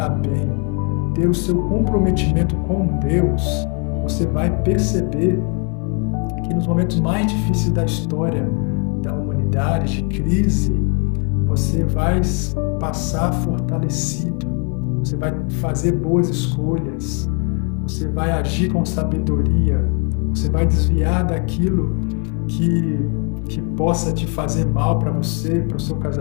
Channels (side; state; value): right; quieter; 37.3 dB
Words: bem, ter o seu comprometimento com Deus, você vai perceber que nos momentos mais difíceis da história da humanidade, de crise, você vai passar fortalecido, você vai fazer boas escolhas, você vai agir com sabedoria, você vai desviar daquilo que possa te fazer mal para você, para o seu